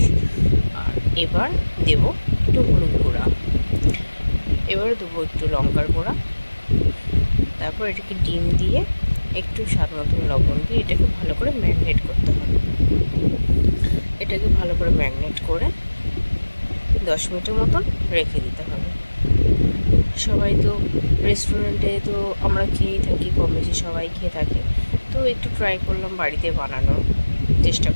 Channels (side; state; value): both; inverted; correlation -1.00